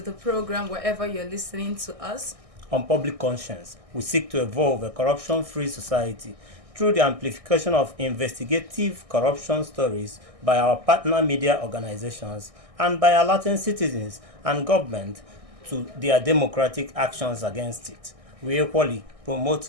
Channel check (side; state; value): left; late; 1.6 ms